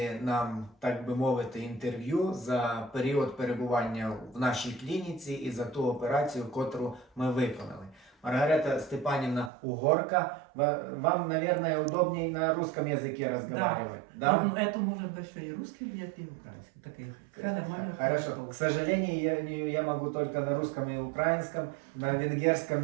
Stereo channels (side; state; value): left; drops out; at 9.5 s